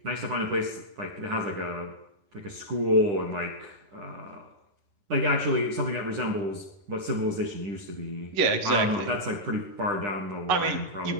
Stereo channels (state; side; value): late; left; 10 ms